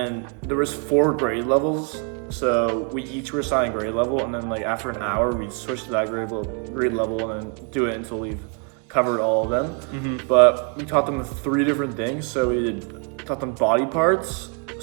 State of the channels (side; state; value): left; quieter; 37.0 dB